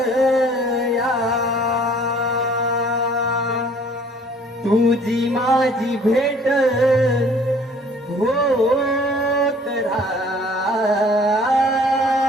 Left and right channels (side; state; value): both; normal; correlation 0.55